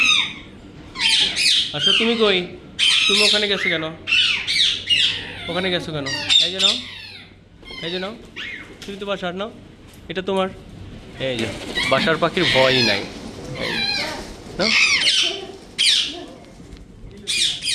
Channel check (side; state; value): both; identical; correlation 1.00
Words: আসো। তুমি কই? তুমি ওখানে গেছো কেন? এই যে নাও, তুমি তো বাসার নাও, এটা তোমার। এই যে বাসার পাখির ভয়ই নাই।